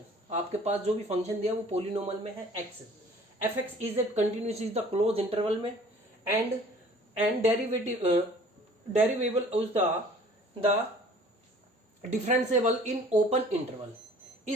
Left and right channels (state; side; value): normal; both; correlation 0.51